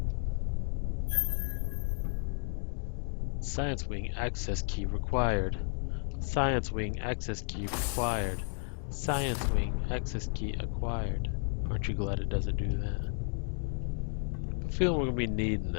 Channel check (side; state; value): right; silent; 56 dB below the other